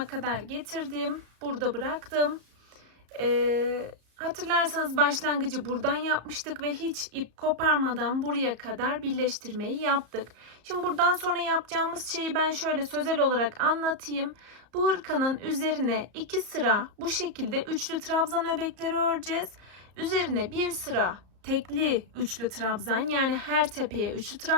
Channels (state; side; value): late; left; 34 ms